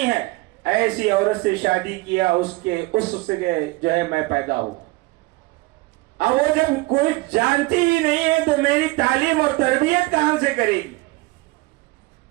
ہے، ایسی عورت سے شادی کیا، اس سے جو ہے میں پیدا ہوں. اب وہ جب کوئی جانتی ہی نہیں ہے تو میری تعلیم اور تربیت کہاں سے کرے گی؟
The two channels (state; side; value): quieter; left; 21.8 dB